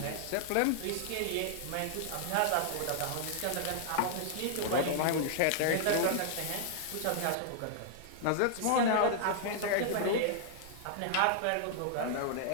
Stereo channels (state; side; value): different; both; correlation -0.01